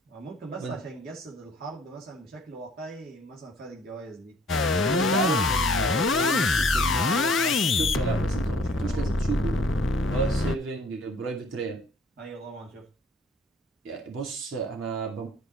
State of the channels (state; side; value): normal; both; correlation 0.56